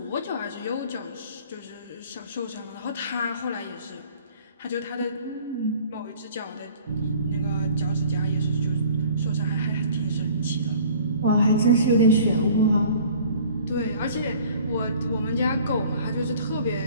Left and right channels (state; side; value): inverted; both; correlation -0.49